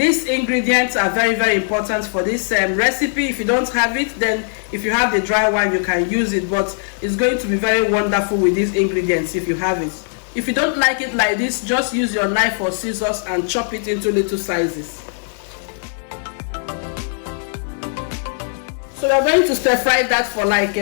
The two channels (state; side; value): silent; right; digital silence